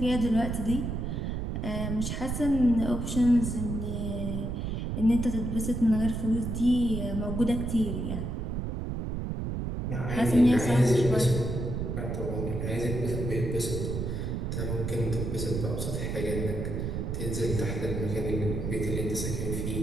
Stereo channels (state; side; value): noise; right; rumble, 2 dB below the sound